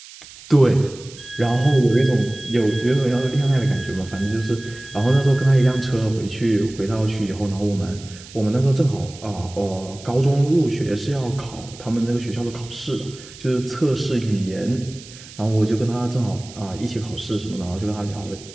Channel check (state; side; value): noise; right; hiss, 18 dB below the sound